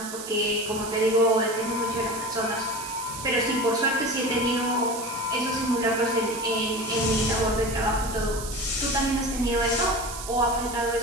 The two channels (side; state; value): right; noise; hiss, 10 dB below the sound